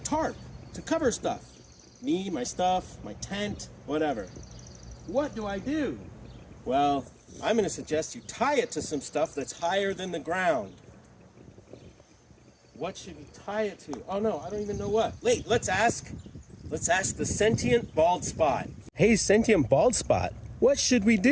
to cover stuff. Me, my stuff, my tent, whatever. What do I do? Well, I'm going to suggest you tie it to some stuff that's higher than the ground. What should you tie it to? Oh no, I don't even know what. Wait, let's ask the sentient bald spot. Hey, sentient bald spot, what should we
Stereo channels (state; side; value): identical; both; correlation 1.00